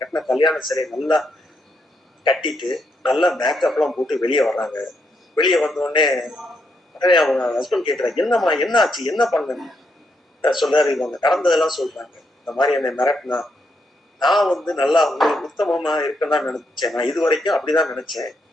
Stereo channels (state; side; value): normal; both; correlation 0.79